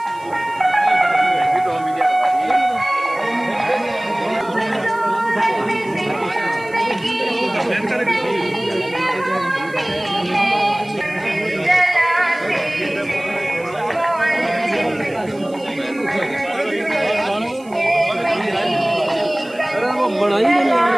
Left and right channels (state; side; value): noise; right; hiss, 26 dB below the sound